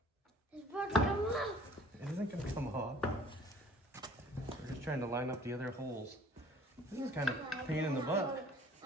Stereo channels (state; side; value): normal; both; correlation 0.52